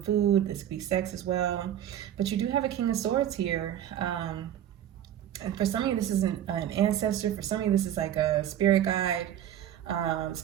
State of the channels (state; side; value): quieter; left; 10.9 dB